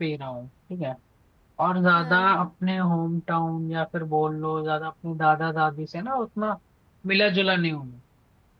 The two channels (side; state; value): both; identical; correlation 1.00